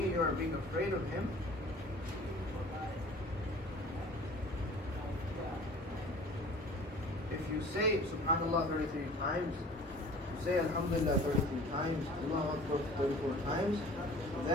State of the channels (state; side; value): normal; both; correlation 0.46